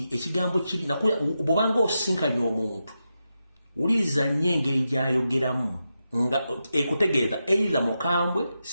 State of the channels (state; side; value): inverted; both; correlation -0.88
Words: ekigambo kiri nakulya bw'obanga osinkanye omuntu wuliriza nnyo engeri gy'ayogeramu nga ekutegeeza either mukambwe